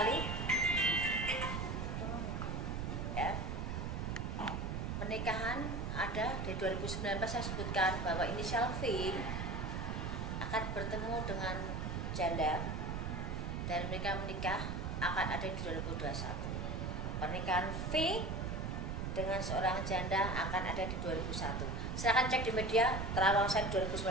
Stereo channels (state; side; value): noise; right; rumble, 2 dB below the sound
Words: ya. Pernikahan ada di 2019, saya sebutkan bahwa inisial V akan bertemu dengan janda, dan mereka menikah akan ada di 2021. Pernikahan V dengan seorang janda akan ada di 2001. Silahkan cek di media terawang saya 2019